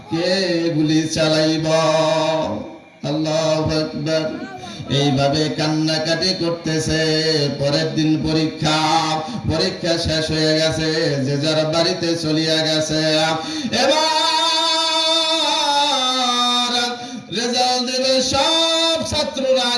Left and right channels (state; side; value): identical; both; correlation 1.00